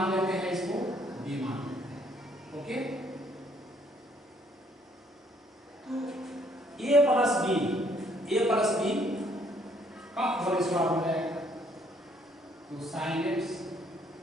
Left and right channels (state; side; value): normal; both; correlation 0.65